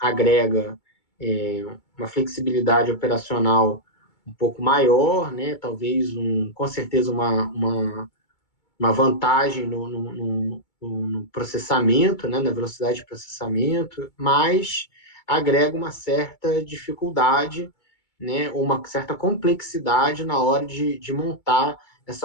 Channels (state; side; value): late; right; 2.2 ms